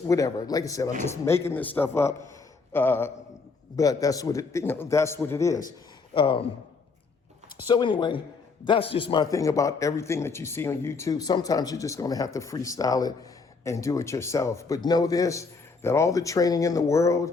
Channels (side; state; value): right; quieter; 4.4 dB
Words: whatever. Like I said, I'm just making this stuff up, but that's what it, you know, that's what it is. So anyway, that's just my thing about everything that you see on YouTube. Sometimes you're just going to have to freestyle it and do it yourself. But know this, that all the training in the